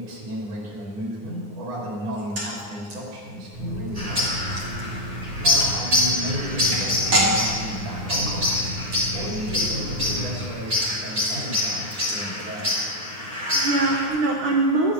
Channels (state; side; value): late; left; 9.7 ms